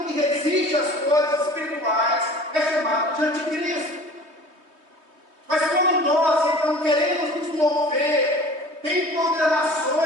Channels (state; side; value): late; left; 3.2 ms